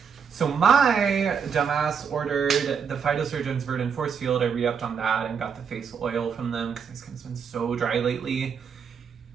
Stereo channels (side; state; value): left; quieter; 6.7 dB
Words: So my dumbass ordered the Phytosurgeon's Verdant Force Field. I re-upped on that and got the face oil from them because my skin's been so dry lately.